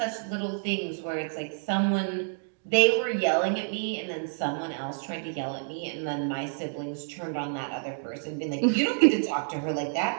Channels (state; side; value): silent; left; digital silence